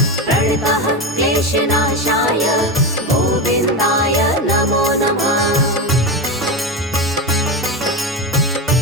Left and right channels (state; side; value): normal; both; correlation 0.18